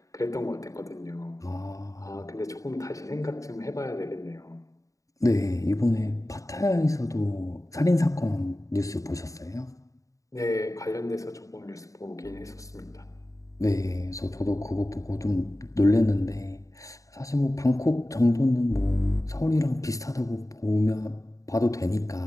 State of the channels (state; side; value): late; right; 0.16 ms